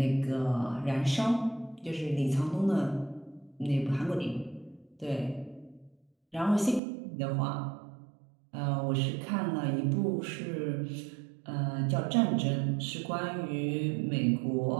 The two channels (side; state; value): left; drops out; at 6.8 s